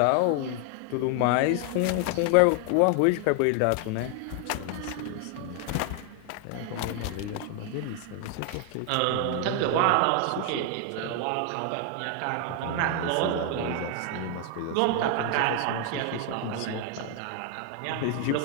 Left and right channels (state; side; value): different; both; correlation 0.00